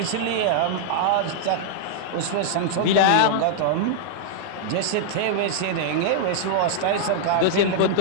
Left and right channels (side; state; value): both; different; correlation -0.01